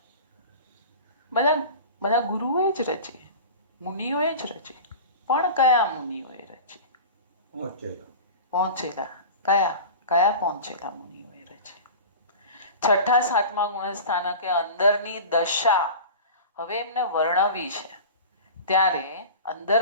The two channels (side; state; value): both; inverted; correlation -0.34